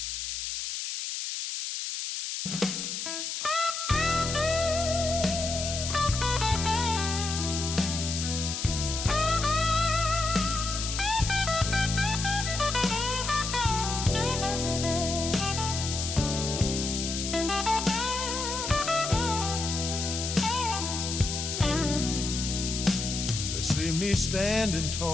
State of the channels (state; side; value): noise; left; hiss, 4 dB below the sound